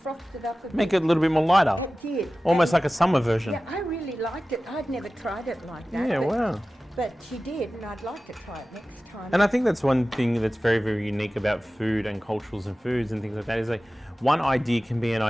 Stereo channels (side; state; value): both; normal; correlation 0.96